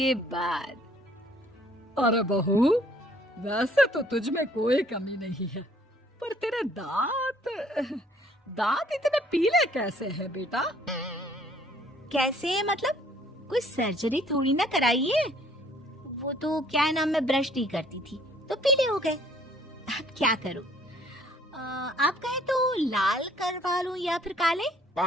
बाद अरे बहू, वैसे तो तुझ में कोई कमी नहीं है, पर तेरे दांत दांत इतने पीले कैसे हैं बेटा? कैसे मतलब? कोई सर्जरी थोड़ी ना कराइए। वो तो क्या नाम, मैं ब्रश नहीं करती थी तो पीले हो गए। अब क्या करूं? आप कहें तो लाल करवा लूं या फिर काले?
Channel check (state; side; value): normal; both; correlation 0.60